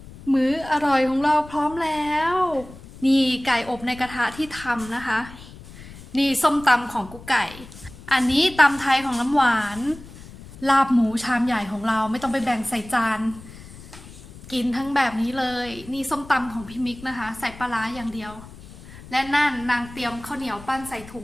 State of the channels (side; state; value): left; noise; rumble, 17 dB below the sound